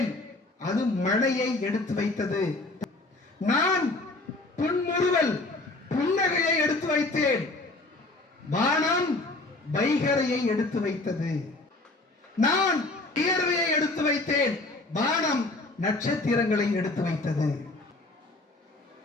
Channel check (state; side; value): quieter; right; 3.0 dB